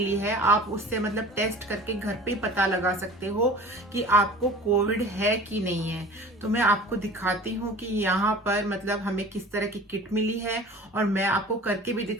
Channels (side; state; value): both; normal; correlation 0.41